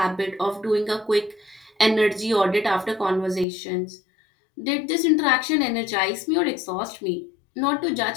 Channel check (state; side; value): drops out; right; at 3.5 s